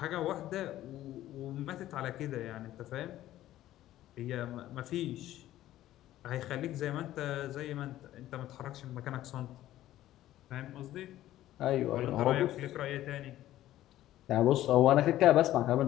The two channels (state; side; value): quieter; right; 14.0 dB